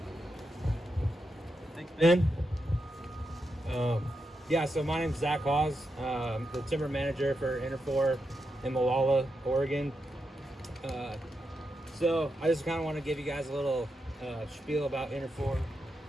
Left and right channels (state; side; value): normal; both; correlation 0.86